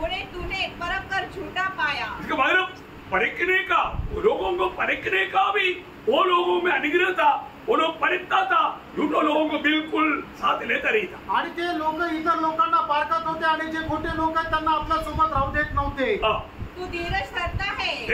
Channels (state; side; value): identical; both; correlation 1.00